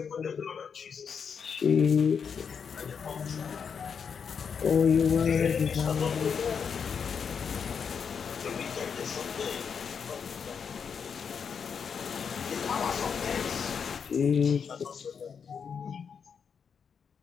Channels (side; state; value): right; quieter; 6.6 dB